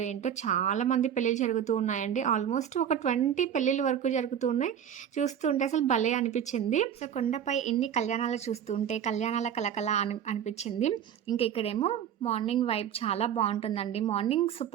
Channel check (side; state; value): left; quieter; 9.3 dB